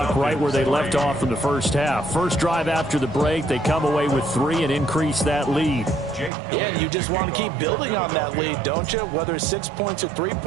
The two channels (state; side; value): drops out; left; at 6.3 s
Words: right where they left off in the first half. First drive after the break, they come away with 3 and increase that lead. Yeah, and you just want to keep building on that lead, don't you? Whether it's 6 points or 3